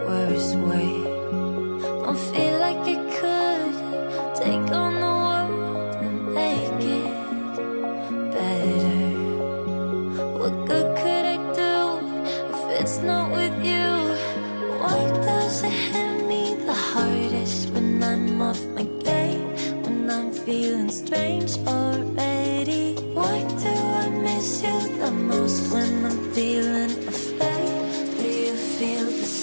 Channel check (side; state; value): both; inverted; correlation -1.00